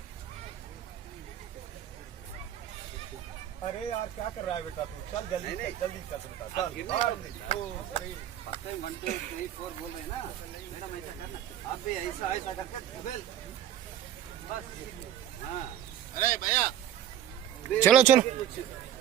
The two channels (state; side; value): quieter; left; 11.0 dB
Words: अरे यार क्या कर रहा है बेटा तू? चल जल्दी जल्दी चल बेटा, चल 1 2 3। 1 2 3 4 बोल रहे हैं ना मैडम, ऐसा करना आप भी, ऐसा ऐसा करके बस। हाँ अरे भैया चलो चलो